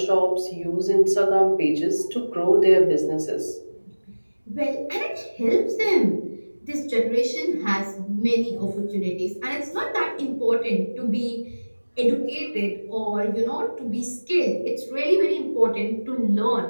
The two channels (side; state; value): both; inverted; correlation -1.00